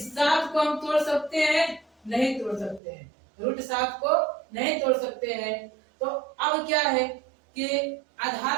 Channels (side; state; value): left; drops out; at 2.8 s